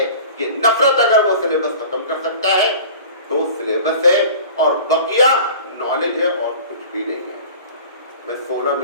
کہ نفرت اگر وہ سلیبس ختم کر سکتا ہے تو سلیبس ہے، اور بقیہ نالج ہے اور کچھ بھی نہیں ہے. میں 16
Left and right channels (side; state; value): both; inverted; correlation -0.41